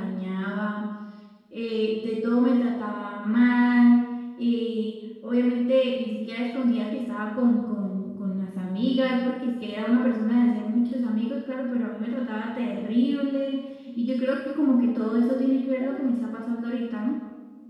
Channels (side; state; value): both; identical; correlation 1.00